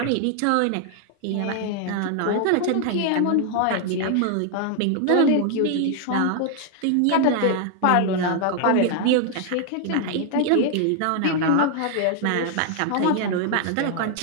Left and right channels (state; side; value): different; both; correlation 0.00